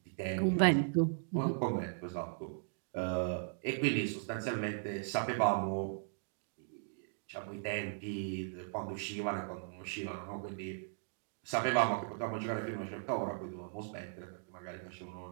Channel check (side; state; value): left; silent; digital silence